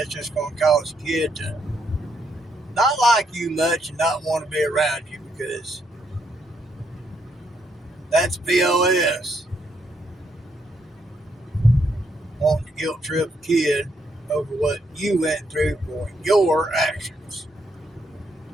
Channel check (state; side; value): normal; both; correlation 0.75